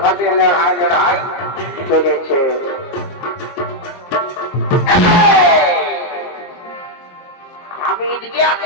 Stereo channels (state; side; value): late; right; 23 ms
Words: খাতে লড়াই লড়াই চলেছে। আমি এদিকে